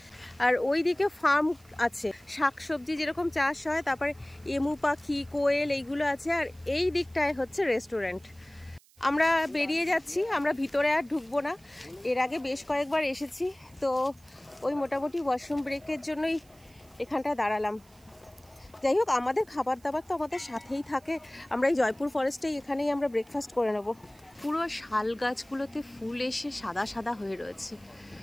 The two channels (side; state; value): right; noise; hiss, 29 dB below the sound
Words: আর ওই দিকে ফার্ম আছে, শাকসবজি যেরকম চাষ হয়, তারপরে এমু পাখি, কোয়েল এইগুলো আছে, আর এই দিকটায় হচ্ছে রেস্টুরেন্ট। আমরা বেরিয়ে যাচ্ছি, আমরা ভিতরে আর ঢুকবো না। এর আগে বেশ কয়েকবার এসেছি, তো ওই মোটামুটি ওয়াশরুম ব্রেকের জন্যই এখানটা দাঁড়ালাম। যাই হোক, আমাদের খাবার দাবার তো আমাদের সাথেই থাকে। আমরা এই জয়পুর ফরেস্টেই এখানেই আমরা ব্রেকফাস্ট করে নেব। পুরো শাল গাছগুলোতে ফুল এসে সাদা সাদা হয়ে রয়েছে,